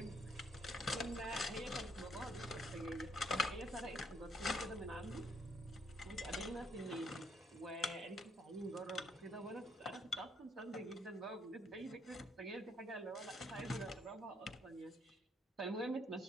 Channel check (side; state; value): both; normal; correlation 0.69